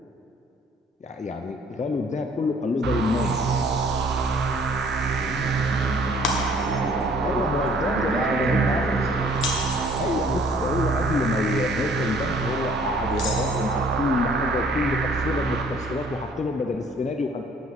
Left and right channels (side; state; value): both; normal; correlation 0.57